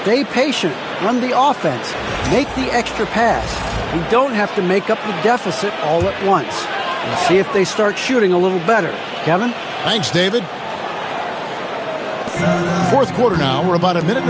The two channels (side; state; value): both; identical; correlation 1.00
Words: patient, run the offense, make the extra pass. You don't have to make up the deficit all at once. We'll see if they start shooting a little better. Kevin? Thanks, David. Fourth quarter now. We're about a minute and